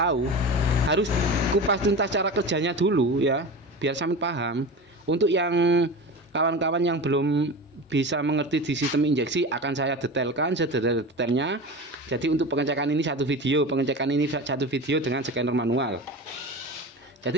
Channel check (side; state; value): both; normal; correlation 0.29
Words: Harus kupas tuntas cara kerjanya dulu ya, biar sampean paham. Untuk yang kawan-kawan yang belum bisa mengerti di sistem injeksi, akan saya detailkan sedetail-detailnya. Jadi untuk pengecekan ini satu video, dengan scanner manual.